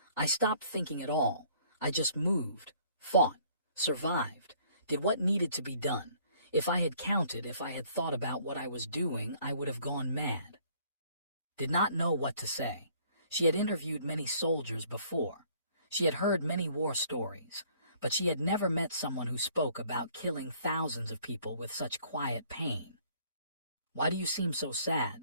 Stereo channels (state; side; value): inverted; both; correlation -0.60